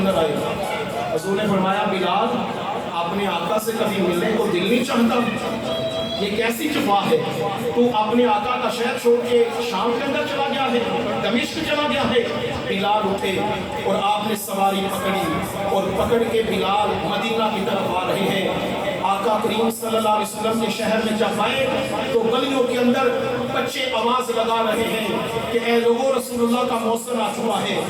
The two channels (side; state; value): both; identical; correlation 1.00